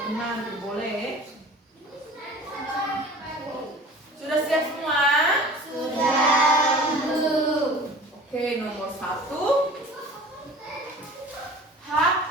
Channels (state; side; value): normal; both; correlation 0.43